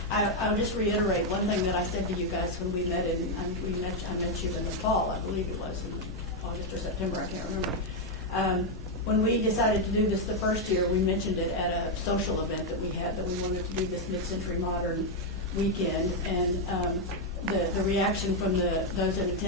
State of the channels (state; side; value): normal; both; correlation 0.02